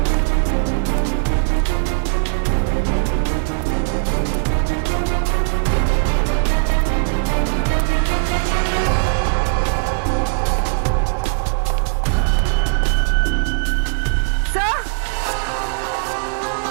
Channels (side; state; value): left; silent; digital silence